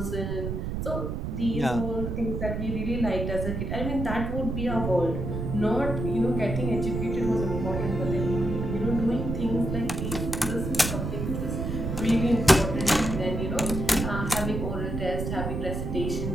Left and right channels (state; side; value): noise; right; rumble, 3 dB below the sound